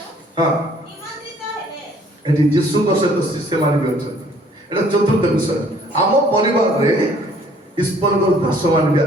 ଏଠି ଯୀଶୁଙ୍କ ସହିତ ଶିଷ୍ୟମାନେ ବି ଅଛନ୍ତି ଏଟା ଚତୁର୍ଥ ବିଷୟ ଆମ ପରିବାରରେ ଈଶ୍ୱରଙ୍କର ଦାସମାନେ ବି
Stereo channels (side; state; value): both; normal; correlation 0.58